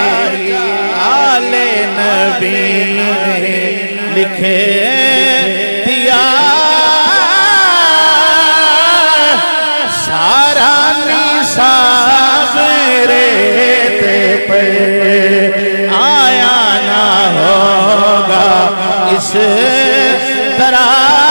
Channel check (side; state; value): both; inverted; correlation -1.00